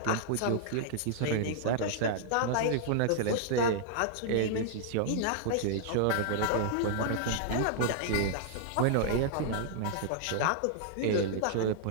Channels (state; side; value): different; both; correlation -0.01